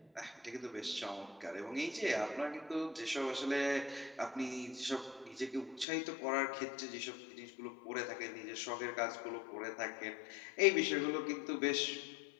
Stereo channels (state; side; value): drops out; right; at 5.9 s